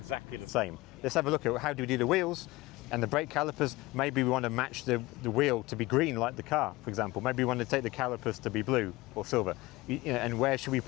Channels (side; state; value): right; quieter; 20.4 dB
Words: the same. Let's have a look at how do we do the wheels and the brake calipers. Maybe we want to match the wheel to be green like the car, for example. Maybe we want to take the calipers to be blue or silver. And where should we